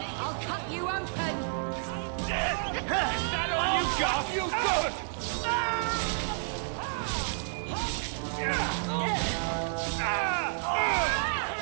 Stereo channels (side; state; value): left; silent; digital silence